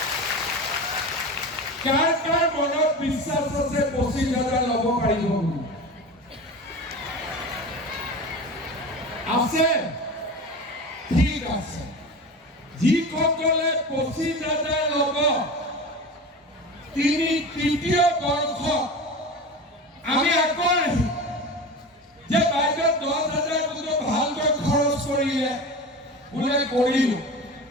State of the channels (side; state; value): both; normal; correlation 0.30